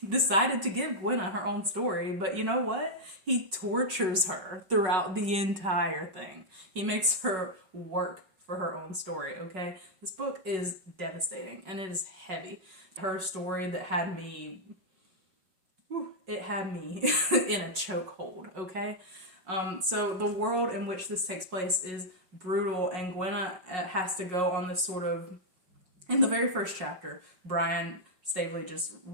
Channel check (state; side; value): late; left; 5.4 ms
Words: decided to give Gwenna her own story, but you know what? He tortures her throughout the entire thing. He makes her work for her own story, okay? This book is devastating, and it is heavy. Her story that had me in a chokehold, okay? So the world in which this takes place is brutal, and Gwenna has to go on this sort of, in the very first chapter, Brian Staveley just